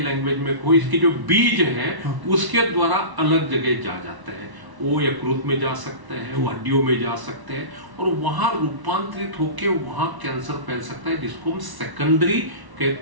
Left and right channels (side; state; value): left; late; 1.0 ms